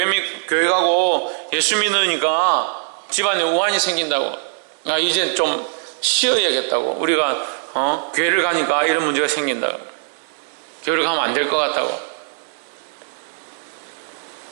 가고 예수 믿으니까 집안에 우환이 생긴다고, 이제 좀 쉬어야겠다고, 우리가 교회를 가니까 이런 문제가 생긴다고, 교회를 가면 안 될 것 같다고.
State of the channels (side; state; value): left; silent; digital silence